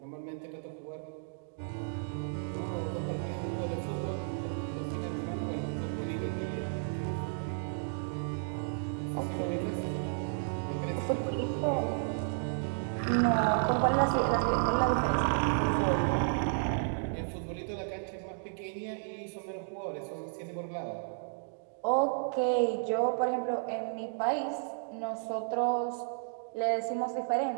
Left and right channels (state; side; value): silent; left; digital silence